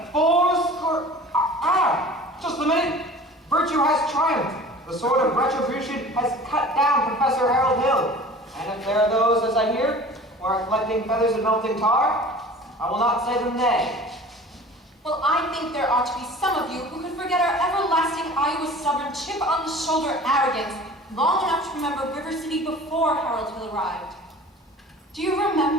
4 score... just a minute. Virtue has triumphed. The sword of retribution has cut down Professor Harold Hill. And if there are those, as I hear, who are collecting feathers and melting tar, I will not say them nay. Well, I think there ought to be some of you who could forget our everlasting Iowa stubborn chip on the shoulder arrogance long enough to remember River City before Harold Hill arrived. Do you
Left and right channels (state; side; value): normal; both; correlation 0.43